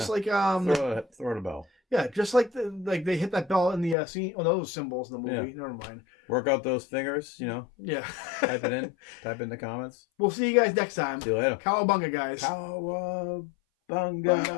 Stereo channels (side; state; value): right; drops out; at 4.0 s